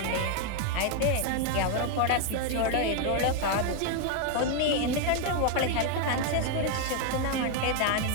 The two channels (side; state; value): both; different; correlation 0.00